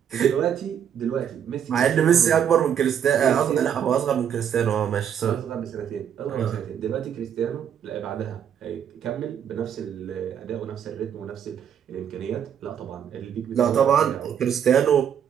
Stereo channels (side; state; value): left; quieter; 8.7 dB